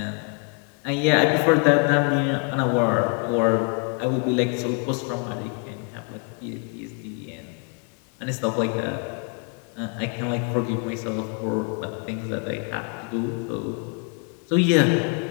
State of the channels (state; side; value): quieter; right; 39.9 dB